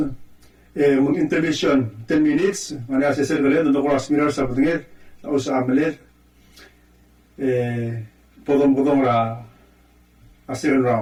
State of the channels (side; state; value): both; identical; correlation 1.00